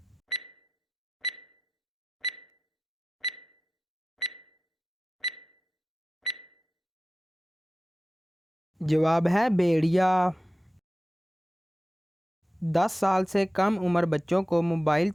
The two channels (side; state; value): both; normal; correlation 0.94